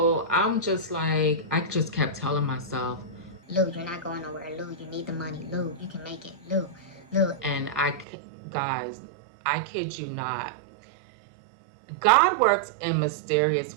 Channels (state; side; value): drops out; left; at 8.1 s